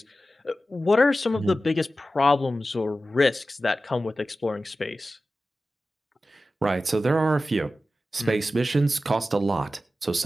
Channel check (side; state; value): both; normal; correlation 0.94